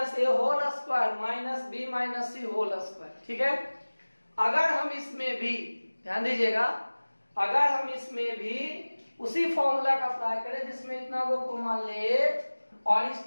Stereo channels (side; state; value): both; inverted; correlation -1.00